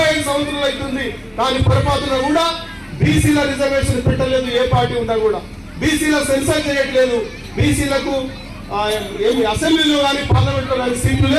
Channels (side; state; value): both; identical; correlation 1.00